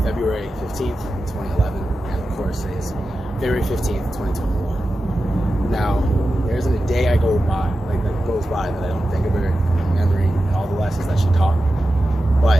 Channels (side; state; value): both; normal; correlation 0.92